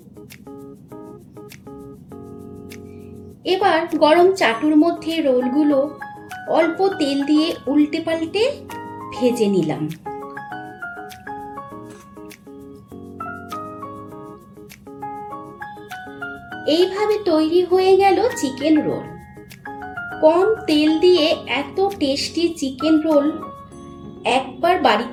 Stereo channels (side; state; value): both; identical; correlation 1.00